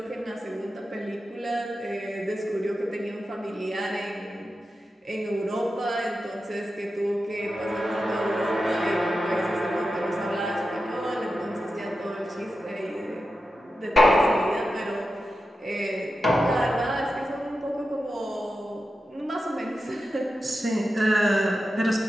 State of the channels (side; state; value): both; normal; correlation 0.91